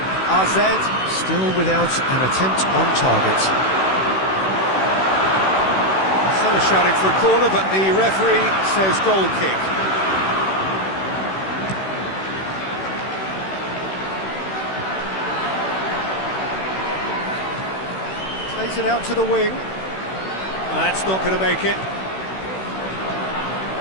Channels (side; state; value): right; late; 16 ms